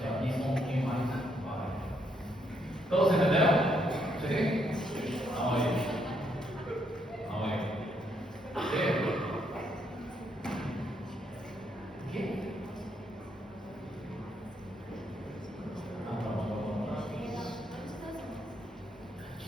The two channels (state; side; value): normal; both; correlation 0.74